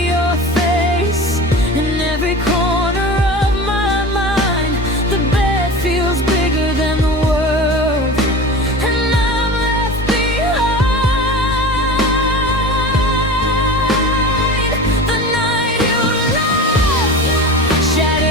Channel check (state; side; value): normal; both; correlation 0.33